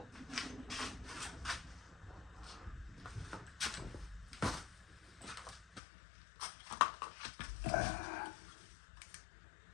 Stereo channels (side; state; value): right; drops out; at 5.8 s